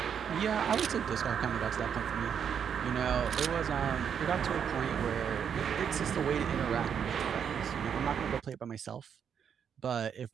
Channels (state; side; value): quieter; left; 7.8 dB